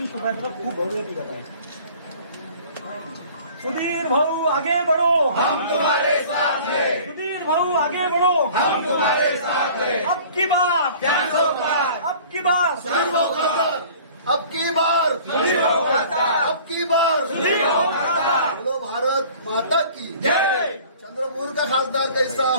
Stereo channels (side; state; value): both; inverted; correlation -0.48